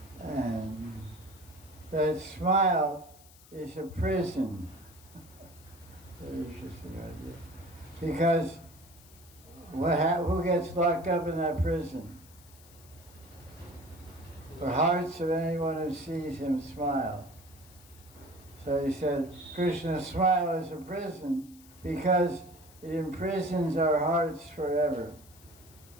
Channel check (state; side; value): noise; left; hiss, 23 dB below the sound